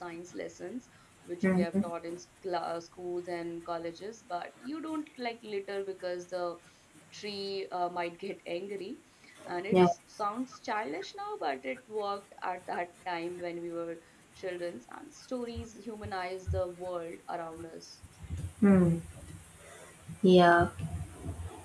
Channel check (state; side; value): identical; both; correlation 1.00